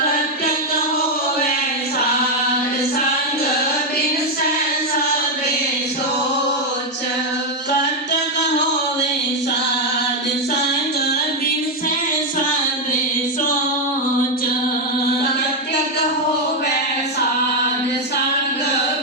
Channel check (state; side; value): normal; both; correlation 0.03